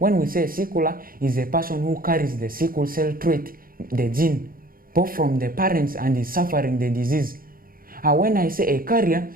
we say sickler, is a person who carries the sickle cell trait, the gene, both from the parents and is suffering the disease. When I say a carrier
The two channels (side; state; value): left; late; 0.42 ms